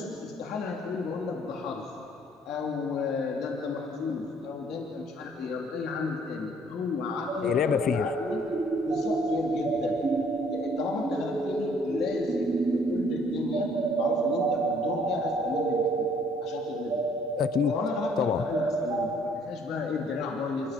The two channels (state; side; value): normal; both; correlation 0.61